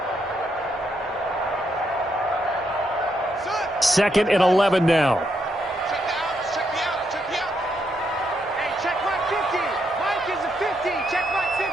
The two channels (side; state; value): both; normal; correlation 0.78